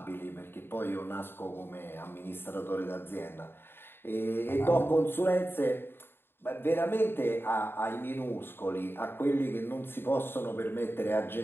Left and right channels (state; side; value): late; right; 0.11 ms